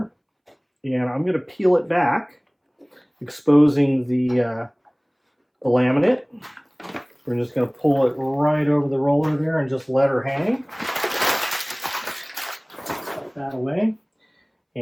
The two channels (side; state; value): both; identical; correlation 1.00